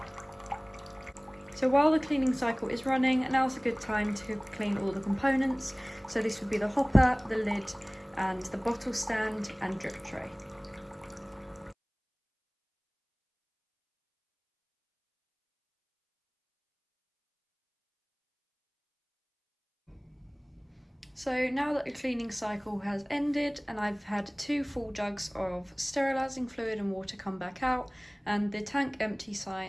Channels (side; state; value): both; identical; correlation 1.00